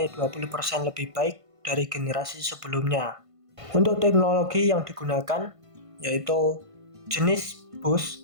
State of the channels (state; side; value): late; left; 1.5 ms